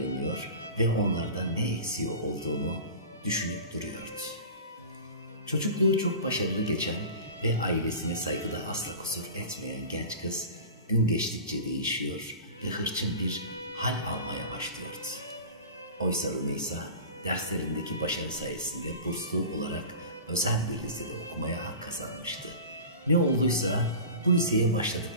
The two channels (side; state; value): both; inverted; correlation -0.35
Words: ve onlardan ne eksiği olduğunu düşünüp duruyordu. Çocukluğu çok başarılı geçen ve ailesine saygıda asla kusur etmeyen genç kız gün geçtikçe değişiyor ve hırçın bir hal almaya başlıyordu. Oysa Rümeysa derslerindeki başarı sayesinde burslu olarak özel bir lisede okumaya hak kazanmıştı. Ne olduysa bu liseye